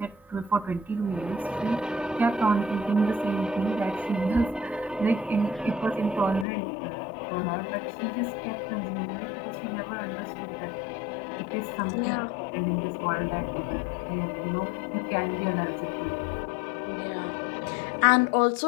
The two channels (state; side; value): drops out; right; at 6.5 s